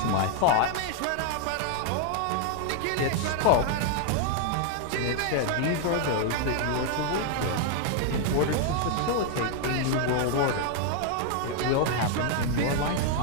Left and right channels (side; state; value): both; different; correlation 0.00